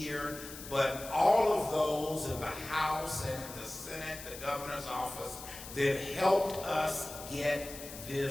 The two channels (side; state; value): left; noise; hiss, 12 dB below the sound